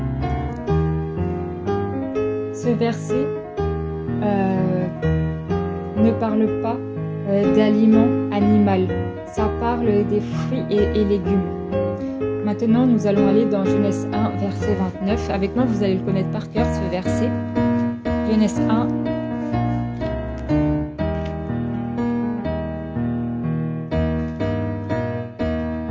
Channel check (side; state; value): both; identical; correlation 1.00